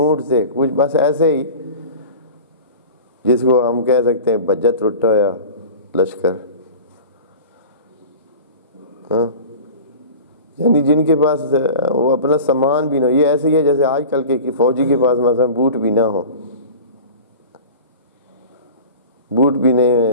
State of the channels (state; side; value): inverted; both; correlation -0.37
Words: تھے، کچھ بس ایسے ہی جس کو ہم کہہ سکتے ہیں بجت رٹا یا لشکر، ہاں یعنی جن کے پاس وہ اپنا سامان بھی نہ ہو. یہ ایسے ہی ہے جیسے آج کل کے فوجی کے پاس مثلا بوٹ بھی نہ ہو، بوٹ بھی